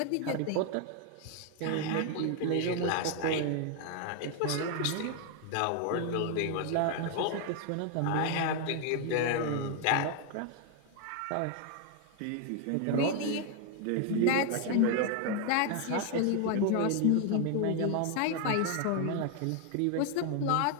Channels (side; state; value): both; different; correlation 0.00